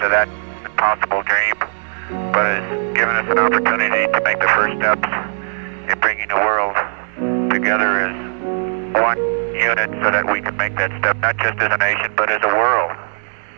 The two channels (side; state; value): left; silent; 64 dB below the other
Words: that impossible dream, but has given us an opportunity to make the first steps in bringing the world together as one unit so that we can make that step not just as a nation, but as a world.